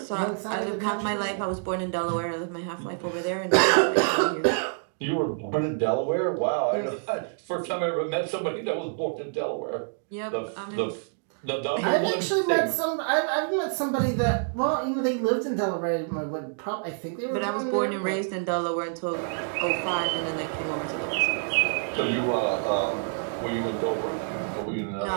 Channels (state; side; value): silent; left; digital silence